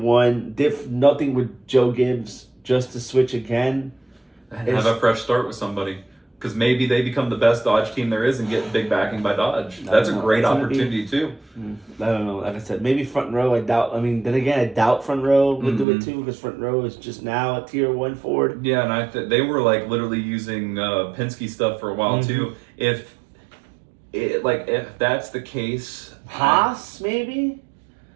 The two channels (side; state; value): left; drops out; at 15.9 s